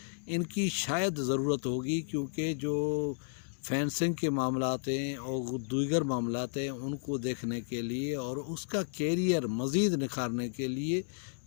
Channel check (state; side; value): silent; right; digital silence